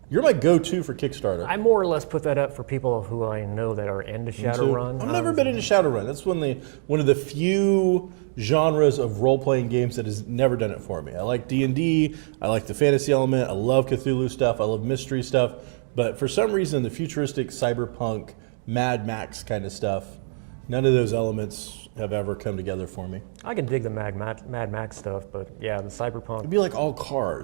You're my go-to for Kickstarter. I more or less put that up for people who I know that are into Shadowrun. I've never been into Shadowrun. That's one of the few genres of role-playing games that has never done it for me. I like D&D. I like the fantasy element. I love Cthulhu stuff. I love mystery stuff. But for some reason, the futuristic cyberpunk, Mad Max kind of stuff, none of those elements have ever come together for me. I can dig the Mad Max stuff, but yeah, the cyberpunk. It'd be like all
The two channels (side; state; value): left; silent; digital silence